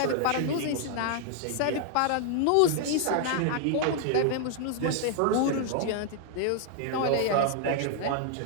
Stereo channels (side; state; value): both; different; correlation 0.00